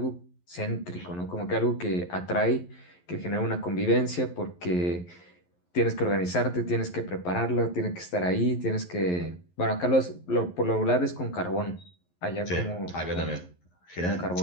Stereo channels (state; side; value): late; right; 11 ms